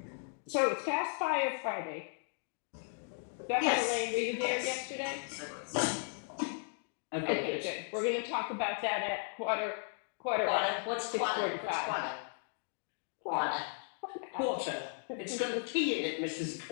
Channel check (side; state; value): right; silent; 54 dB below the other